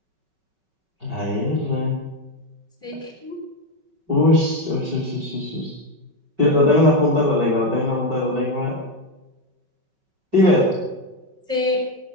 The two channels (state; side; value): late; left; 5.3 ms